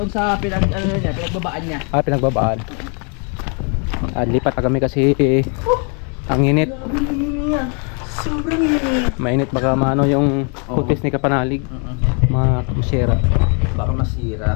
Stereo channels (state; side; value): quieter; right; 38.3 dB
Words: sa pinagbabaan niya. Pinagbabaan. Lipat na kami kasi ang init. Sobrang init. Mainit baka maano yung kutis ni Kapanalig. Masira. Baka